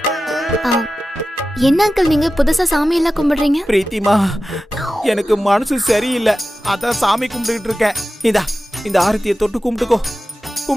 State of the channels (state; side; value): normal; both; correlation 0.94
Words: என்ன அங்கிள் நீங்க புதுசா சாமி எல்லாம் கும்பிடுறீங்க? பிரீத்திமா, எனக்கு மனசு சரியில்லை, அதான் சாமி கும்பிட்டுக்கிட்டு இருக்கேன். இந்த ஆரத்தியை தொட்டு